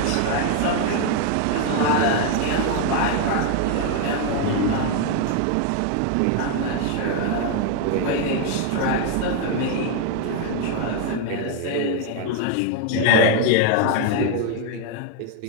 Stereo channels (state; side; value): different; both; correlation 0.01